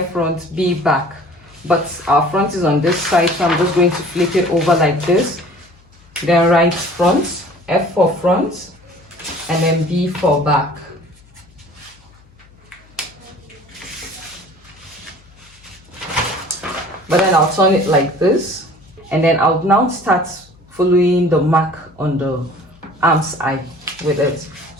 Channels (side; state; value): left; noise; hum, 28 dB below the sound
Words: front, B back. But our front is on this side, so I'm just going to flip it over like this. Then write front, F for front, and then B for back. but then I'll turn it like this, and then I'll now start following the mark on the arm's eye with it.